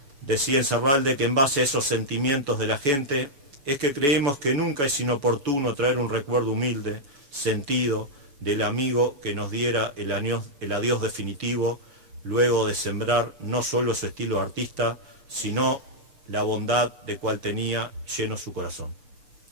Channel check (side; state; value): left; late; 7.1 ms